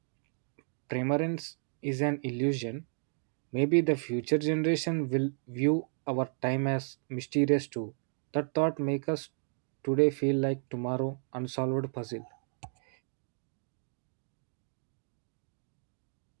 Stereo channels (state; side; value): silent; left; 56 dB below the other